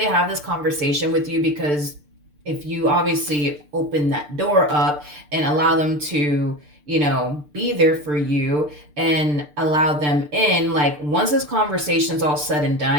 have this conversation with you, because if you obviously open that door up and allow them to, you know, be there for you and allow them in, like, once this conversation's all said and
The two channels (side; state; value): left; late; 6.7 ms